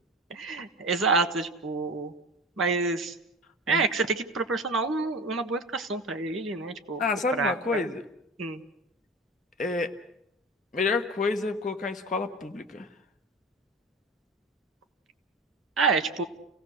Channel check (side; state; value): both; normal; correlation 0.31